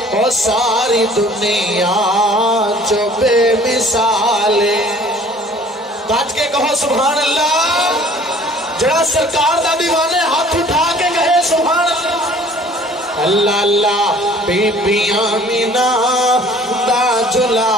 او ساری دنیا جو بے مثالے بات کے کہو سبحان اللہ جڑا سرکار دا دیوانے ہاتھ اٹھا کے کہے سبحان اللہ اللہ اللہ بی بی آمینہ دا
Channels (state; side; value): normal; both; correlation 0.52